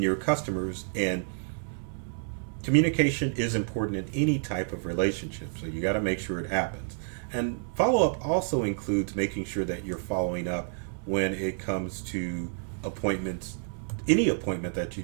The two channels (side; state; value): left; silent; 58 dB below the other